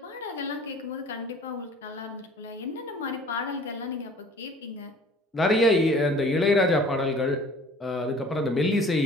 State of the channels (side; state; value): both; normal; correlation 0.49